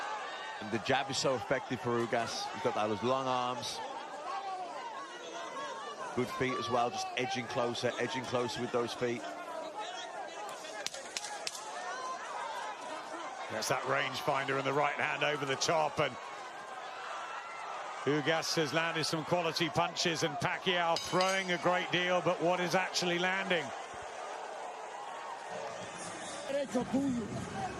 And the jab is so effective for Ugas. He's got those long arms. Good feet as well, just edging closer with those feet. There's that rangefinder in the right hand over the top, and Ugas has landed some quality punches, and Pacquiao throwing a great deal, but what is actually landing?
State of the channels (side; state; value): both; identical; correlation 1.00